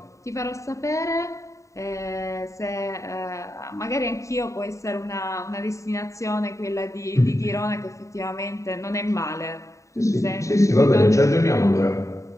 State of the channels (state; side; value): late; right; 0.15 ms